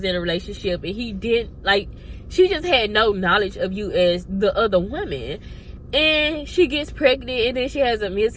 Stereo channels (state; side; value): identical; both; correlation 1.00